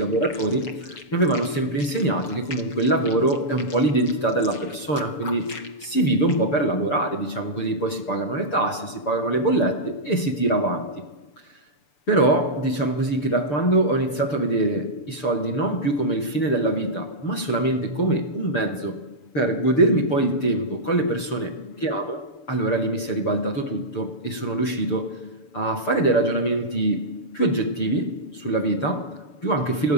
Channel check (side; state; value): right; late; 6.8 ms